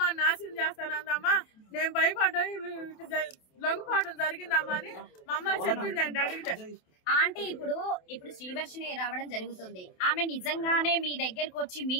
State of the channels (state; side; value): late; right; 27 ms